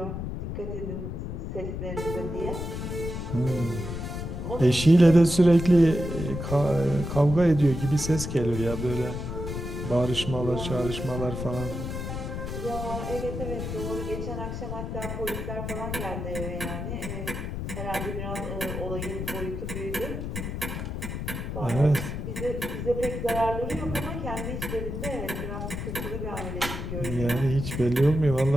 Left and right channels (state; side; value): noise; left; rumble, 5 dB below the sound